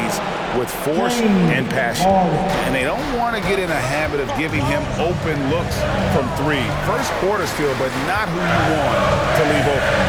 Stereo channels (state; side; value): identical; both; correlation 1.00